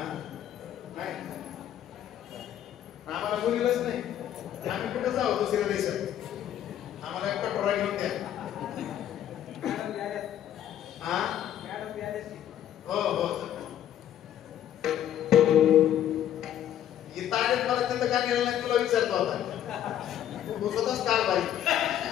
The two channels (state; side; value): quieter; right; 11.0 dB